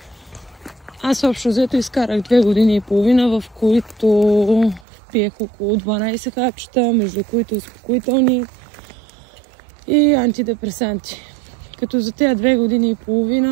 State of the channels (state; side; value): drops out; left; at 4.9 s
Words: Аз общо взето изкарах 2 години и половина, в които пиех около 12 хапчета, между които успокоителни и антидепресанти. Като за тези 2 години и